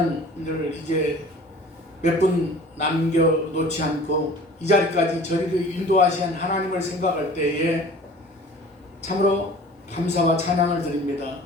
이제 몇 분 남겨놓지 않고 이 자리까지 저희를 인도하신 하나님을 생각할 때에 참으로 감사와 찬양을 드립니다.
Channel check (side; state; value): both; normal; correlation 0.45